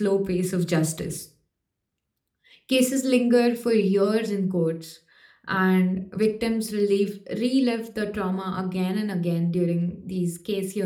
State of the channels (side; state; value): both; identical; correlation 1.00